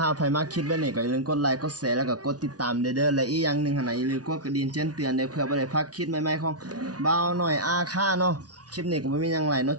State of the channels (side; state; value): left; late; 0.68 ms